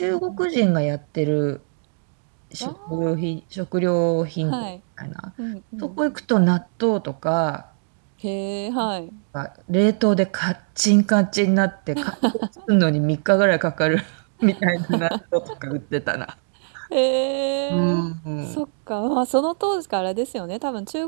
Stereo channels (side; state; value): left; silent; digital silence